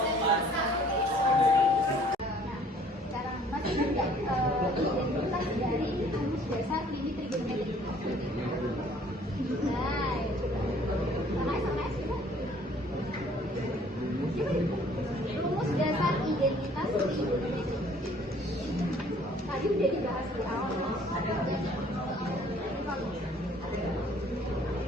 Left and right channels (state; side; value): normal; both; correlation 0.57